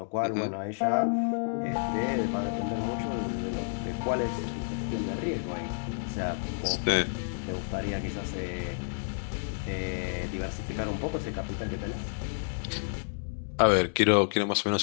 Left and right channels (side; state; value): right; silent; digital silence